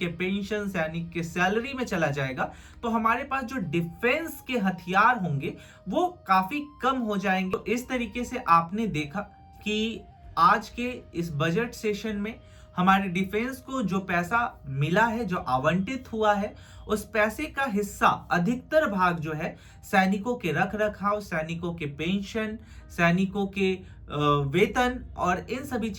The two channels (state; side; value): identical; both; correlation 1.00